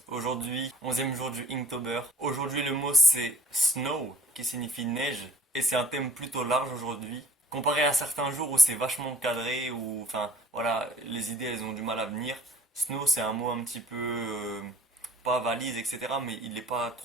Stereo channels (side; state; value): both; normal; correlation 0.53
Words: aujourd'hui, 11e jour du Inktober. Aujourd'hui le mot c'est snow, qui signifie neige, et c'est un thème plutôt large aujourd'hui. Comparé à certains jours où c'est vachement cadré, où, enfin, voilà, les idées elles ont du mal à venir. Snow c'est un mot un petit peu, pas valise, etc., mais il n'est pas